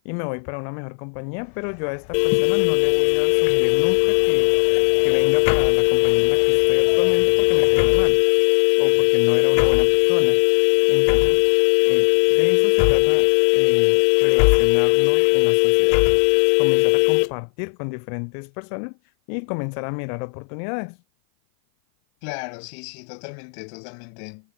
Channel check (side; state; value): right; silent; 56 dB below the other